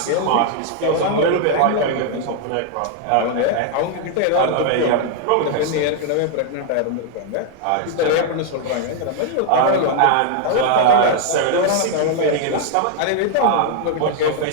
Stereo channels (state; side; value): different; both; correlation 0.00